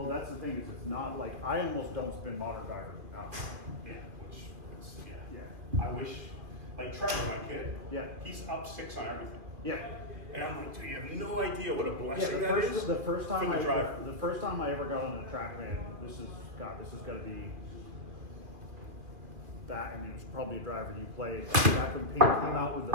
that's the thing is it's not like, I almost don't spin modern drivers enough. Yeah, which is, Yeah. I wish, like Trevor, my kid, Yeah. he's up 6 on everything. Yeah. And I'm like, dude, you have no idea what a Yeah, blessing the that first, is the first time for the driver. the first time I ever got on a track man, this is got to be that, and it was probably a driver you played back when Pink came out with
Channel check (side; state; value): left; late; 2.4 ms